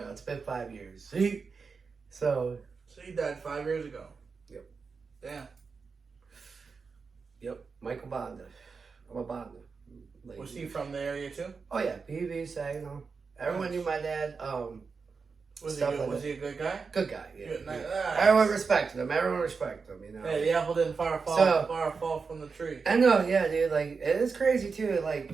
know, it's been 5 years. So he died 5 years ago. Yep. Damn. Yep. Michael Bonda. I'm a Bonda. Like, Was he from the area, too? Oh, yeah. BB, Saginaw. Everyone knew my dad. Was he a good guy? Good guy, yeah. Good, nice. Everyone respected him, you know. Hey, the apple didn't far fall from the tree. I know, yeah, dude, like, it is crazy, too,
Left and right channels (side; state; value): left; quieter; 5.0 dB